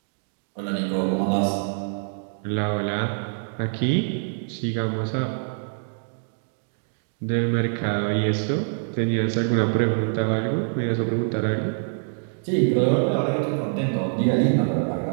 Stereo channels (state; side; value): silent; left; digital silence